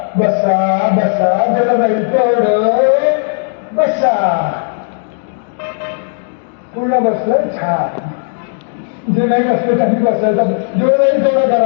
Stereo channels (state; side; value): silent; right; digital silence